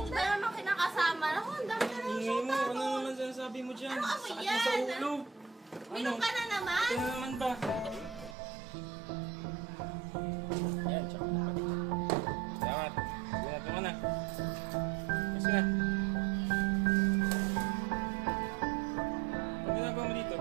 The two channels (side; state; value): left; drops out; at 8.3 s